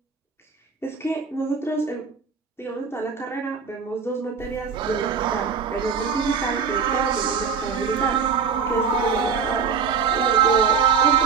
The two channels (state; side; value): quieter; left; 5.9 dB